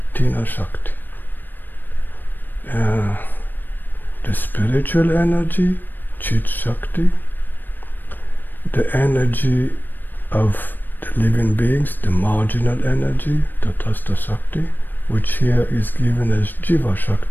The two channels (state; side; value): late; right; 0.092 ms